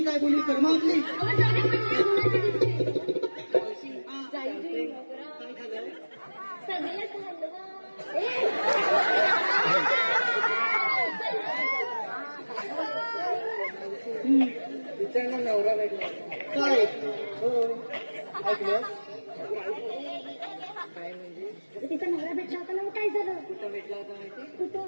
काय बोली कर्मा आपली विचारणा नवरा भेटला काय हो ऐकलं काय म्हणजे तिचा नवरा भेटला होता ना, काय झालं? कुठं भेटला होता माहिती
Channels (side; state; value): both; inverted; correlation -1.00